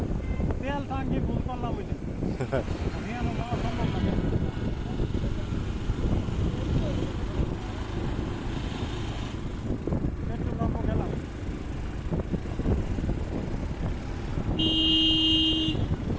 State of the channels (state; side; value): identical; both; correlation 1.00